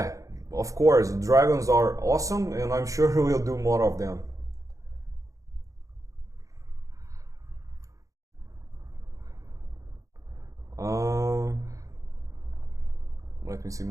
of course, dragons are awesome, and I'm sure we'll do more of them. Let me see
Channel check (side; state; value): left; late; 0.16 ms